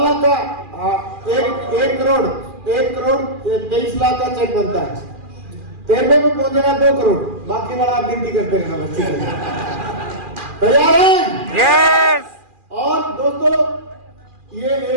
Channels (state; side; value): late; left; 2.4 ms